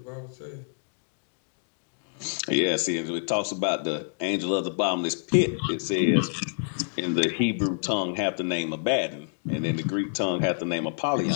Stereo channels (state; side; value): silent; right; digital silence